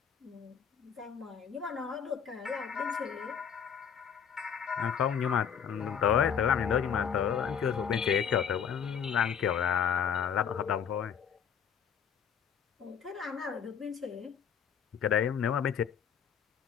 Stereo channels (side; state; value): right; quieter; 7.6 dB